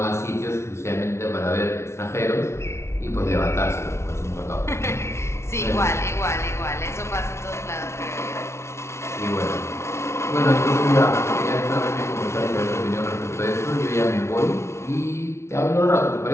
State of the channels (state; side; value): late; right; 0.13 ms